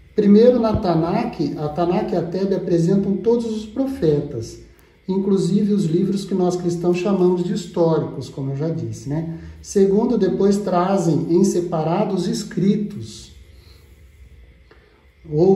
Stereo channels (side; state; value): both; identical; correlation 1.00